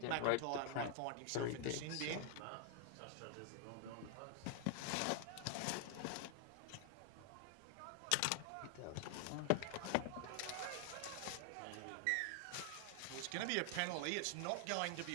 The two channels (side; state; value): both; different; correlation 0.00